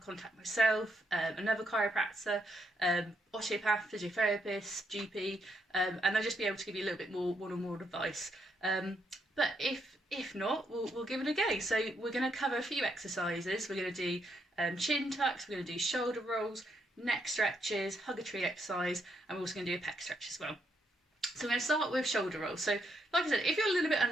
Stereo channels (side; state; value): both; normal; correlation 0.77